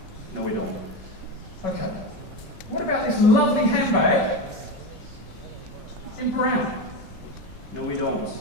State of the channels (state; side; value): late; right; 5.4 ms